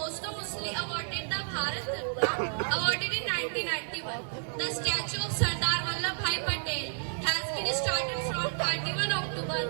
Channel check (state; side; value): silent; left; digital silence